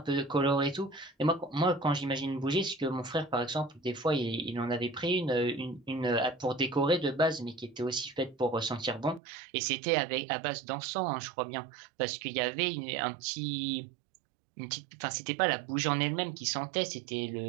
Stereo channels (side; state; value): left; drops out; at 9.2 s